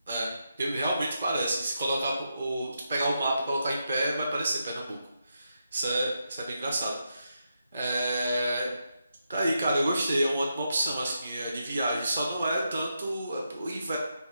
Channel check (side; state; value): both; inverted; correlation -0.84